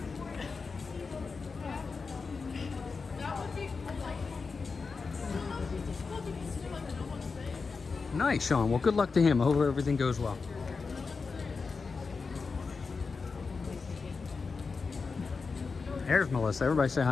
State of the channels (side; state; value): right; quieter; 4.7 dB